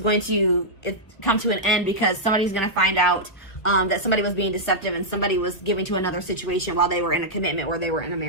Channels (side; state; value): right; late; 1.8 ms